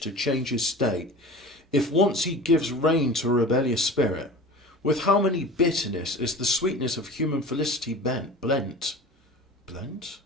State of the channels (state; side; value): normal; both; correlation 0.37